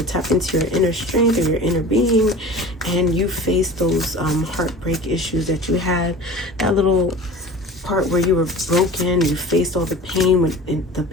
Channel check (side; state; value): both; normal; correlation 0.38